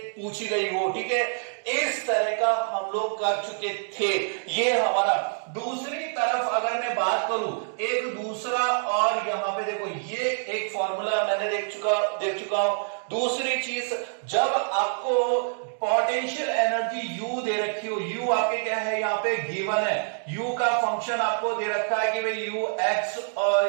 पूछी गई हो, ठीक है। इस तरह का हम लोग कर चुके थे। ये हमारा दूसरी तरफ अगर मैं बात करूं एक दूसरा, और यहाँ पे देखो ये एक फॉर्मूला मैंने देख चुका हूं। दूसरी चीज, जब आपको पोटेंशियल एनर्जी u दे रखी हो, u आपके क्या है यहाँ पे गिवन है, u का फंक्शन आपको दे रखा है कि भाई u x,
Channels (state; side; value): silent; left; digital silence